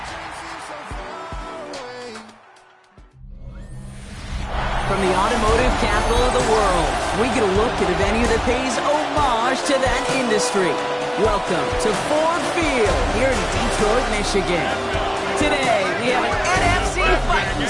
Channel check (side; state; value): both; identical; correlation 1.00